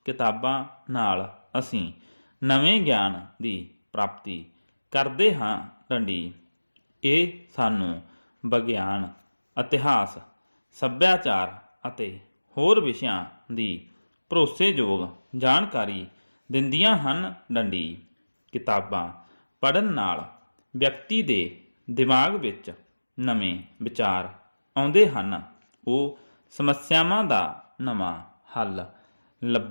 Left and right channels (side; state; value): both; inverted; correlation -1.00